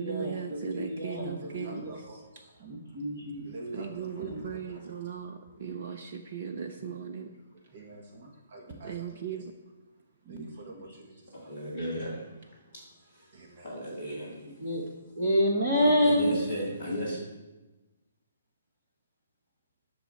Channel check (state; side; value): inverted; both; correlation -0.69